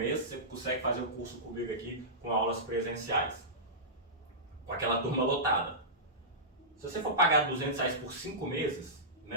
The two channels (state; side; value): normal; both; correlation -0.16